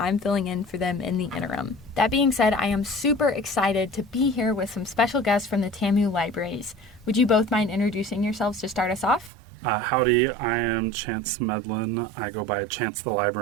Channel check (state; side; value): drops out; left; at 9.3 s